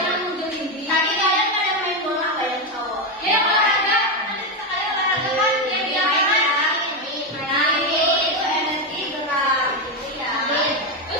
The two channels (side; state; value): both; normal; correlation 0.09